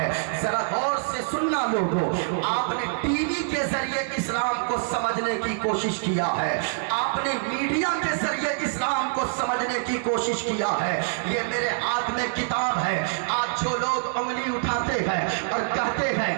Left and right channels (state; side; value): silent; left; 58 dB below the other